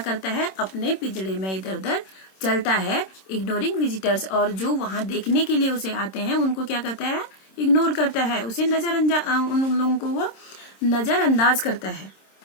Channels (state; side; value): late; right; 26 ms